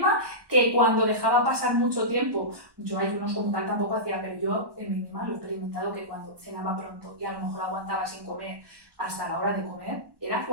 que cuando dejaba pasar mucho tiempo, yo ayunos como tal tampoco hacía, pero yo en mí misma lo he experimentado, que cuando cenaba pronto y a lo mejor aguantaba sin comer hasta la hora de comer, era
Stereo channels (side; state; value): left; late; 1.1 ms